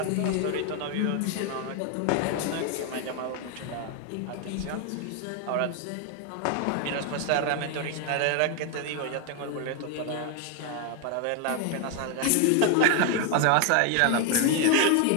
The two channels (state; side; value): different; both; correlation 0.01